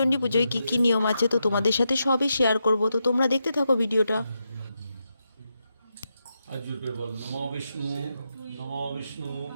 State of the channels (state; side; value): inverted; both; correlation -0.85